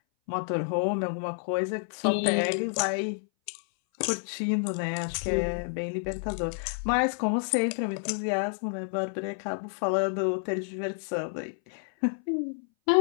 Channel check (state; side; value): silent; right; 58 dB below the other